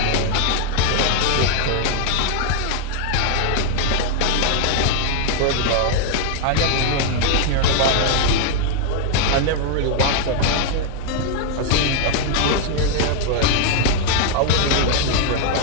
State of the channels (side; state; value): both; different; correlation 0.00